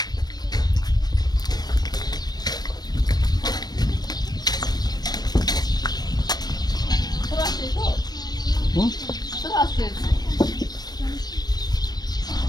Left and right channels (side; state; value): right; late; 0.19 ms